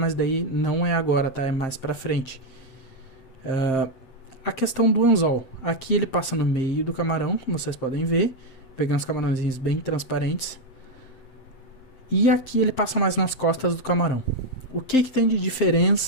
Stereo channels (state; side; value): late; right; 7.6 ms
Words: daí não é agora, tá? É mais pra frente. A questão do anzol. Aqui ele passa no meio do camarão, como vocês podem ver. Peguei uns camarãozinhos bem transparentes. E aqui ele passa mais nas costas do camarão. O que tem de